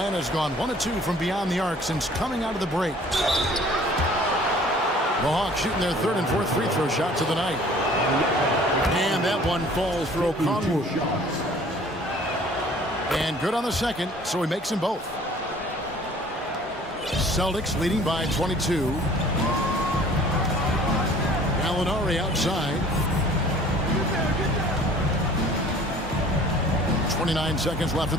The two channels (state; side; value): normal; both; correlation 0.51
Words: gone 1 of 2 from beyond the arc since coming out of the break. The Hawks shooting their third and fourth free throw shots of the night. And that one falls for Okongwu. And good on the second, so he makes them both. Celtics leading by 22. Gallinari outside. 29 seconds left in